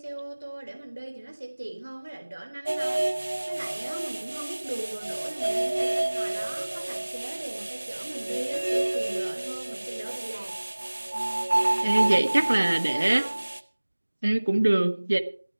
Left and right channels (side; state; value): both; inverted; correlation -1.00